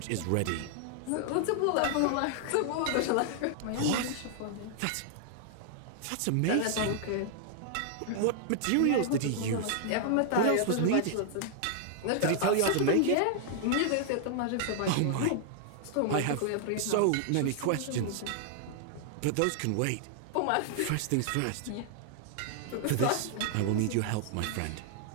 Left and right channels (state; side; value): different; both; correlation 0.00